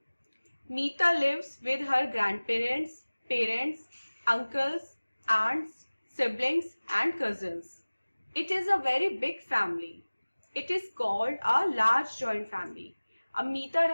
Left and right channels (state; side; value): inverted; both; correlation -1.00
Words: Meeta lives with her grandparents, parents, uncles, aunts, siblings and cousins. It is a very big family. It is called a large joint family. अब मीता